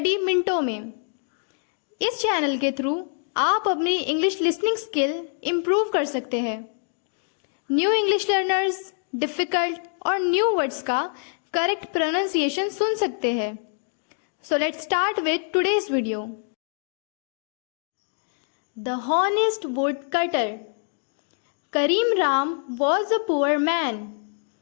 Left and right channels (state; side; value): silent; right; 62 dB below the other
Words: मिनटों में। इस चैनल के थ्रू आप अपनी इंग्लिश लिसनिंग स्किल इम्प्रूव कर सकते हैं। न्यू इंग्लिश लर्नर्स डिफ़िकल्ट और न्यू वर्ड्स का करेक्ट प्रोनाउंसिएशन सुन सकते हैं। So let's start with today's video. The honest would cutter. Karim Ram was a poor man.